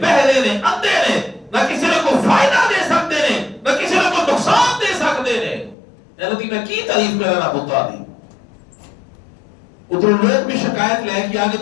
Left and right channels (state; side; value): drops out; right; at 5.8 s